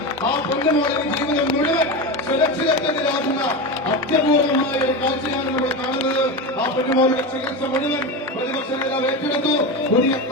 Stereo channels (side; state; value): both; normal; correlation 0.20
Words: ആ പൊന്നുമോളെ ജീവിതം മുഴുവൻ സുരക്ഷിതത്വത്തിലാകുന്ന അത്യപൂർവമായ ഒരു കാഴ്ചയാണ് നമ്മൾ കാണുന്നത്. ആ പൊന്നുമോളുടെ ചികിത്സ മുഴുവൻ പ്രതിപക്ഷ നേതാവ് ഏറ്റെടുത്തു. പുതിയ